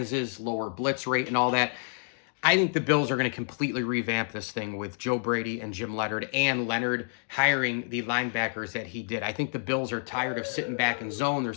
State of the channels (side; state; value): right; silent; 59 dB below the other